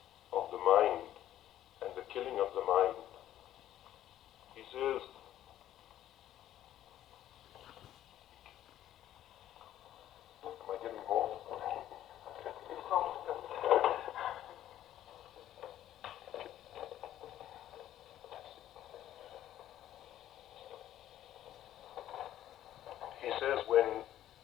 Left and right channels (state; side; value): quieter; right; 12.3 dB